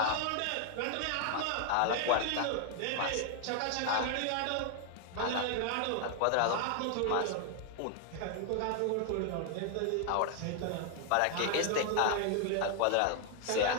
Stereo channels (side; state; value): both; different; correlation 0.00